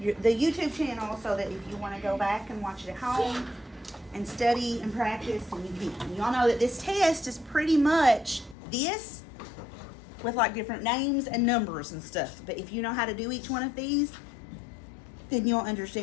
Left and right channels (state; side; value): drops out; right; at 8.6 s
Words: YouTube channel so that if you want to go back and watch it at home and study and practice, and you can. Y'all know that this test is pretty much this with like different names and numbers and stuff. But if you know how to do each one of these, then you'll